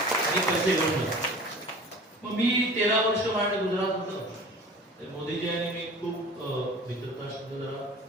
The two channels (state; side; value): normal; both; correlation 0.42